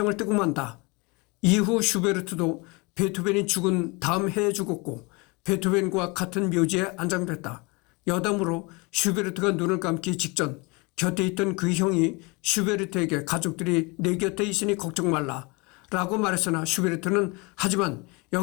뜨고 만다. 이후 슈베르트도 베토벤이 죽은 다음 해에 죽었고 베토벤과 같은 묘지에 안장됐다. 여담으로 슈베르트가 눈을 감기 직전 곁에 있던 그 형이 슈베르트에게 가족들이 내 곁에 있으니 걱정 말라 라고 말했으나 슈베르트는 하지만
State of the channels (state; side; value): quieter; right; 27.8 dB